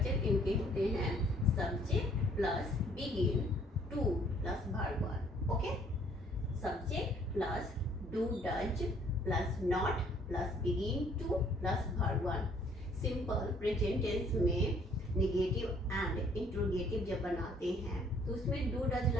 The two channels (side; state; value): both; normal; correlation 0.61